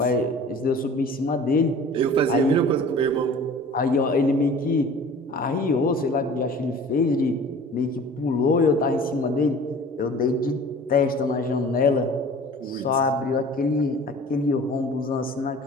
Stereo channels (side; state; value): both; normal; correlation 0.44